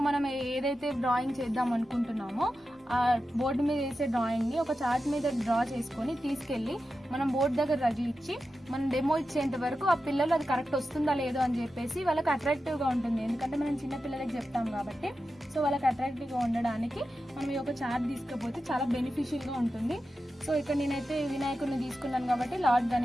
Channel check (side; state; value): both; normal; correlation 0.91